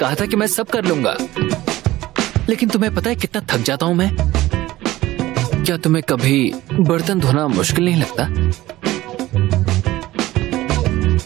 था कि मैं सब कर लूंगा, लेकिन तुम्हें पता है कितना थक जाता हूँ मैं? क्या तुम्हें कभी बर्तन धोना मुश्किल नहीं लगता?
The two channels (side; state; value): left; quieter; 16.6 dB